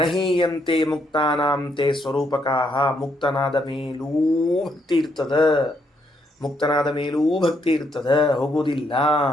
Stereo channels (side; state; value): both; normal; correlation 0.74